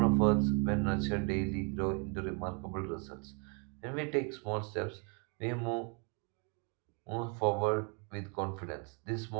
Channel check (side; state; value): left; quieter; 36.5 dB